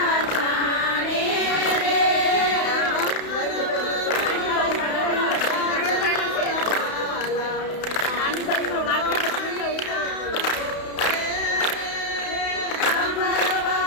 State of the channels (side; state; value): right; late; 32 ms